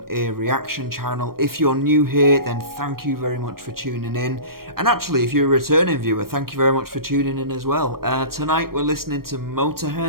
Ear Reaction channel. If you're new here, then thank you very much for tuning in. And actually, if you're a returning viewer, thank you very much for tuning in as well. Tonight we're listening to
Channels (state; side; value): late; left; 0.93 ms